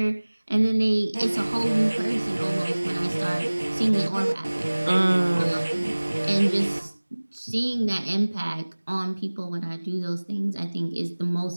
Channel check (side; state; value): both; inverted; correlation -1.00